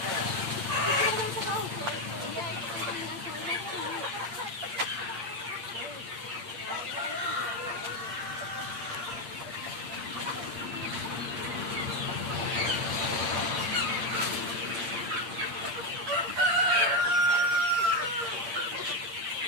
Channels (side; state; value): left; late; 8.7 ms